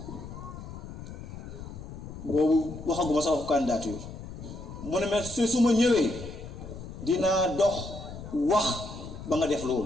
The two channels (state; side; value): noise; left; rumble, 11 dB below the sound